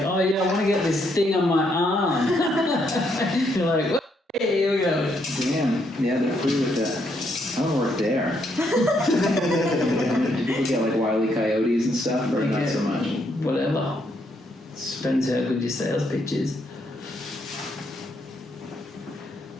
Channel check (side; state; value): both; normal; correlation 0.74